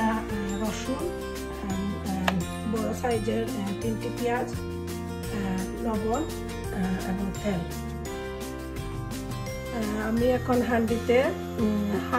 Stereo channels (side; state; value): both; identical; correlation 1.00